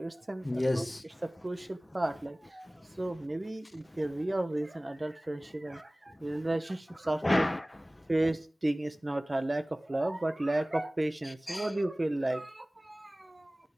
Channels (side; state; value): both; normal; correlation 0.98